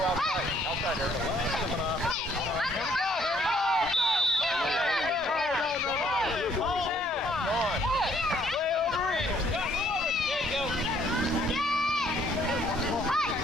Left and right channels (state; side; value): normal; both; correlation 0.64